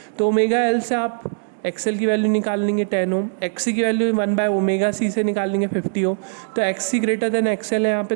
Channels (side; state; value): left; silent; 65 dB below the other